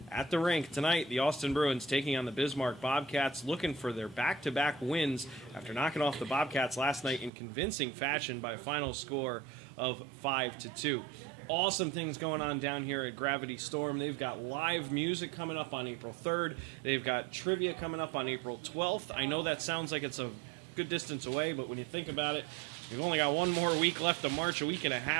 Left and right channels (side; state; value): left; drops out; at 7.3 s